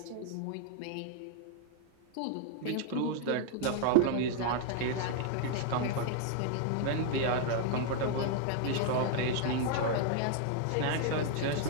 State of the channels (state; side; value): different; both; correlation 0.00